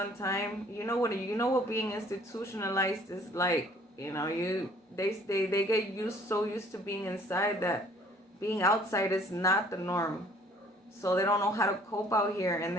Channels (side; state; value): both; normal; correlation 0.57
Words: time. You know what being institutionalized is like. They get so used to being inside that being outside is not the norm. So they don't know how to cope out here, and